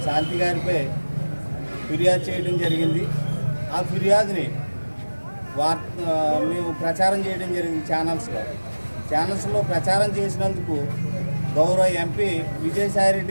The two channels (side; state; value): both; inverted; correlation -1.00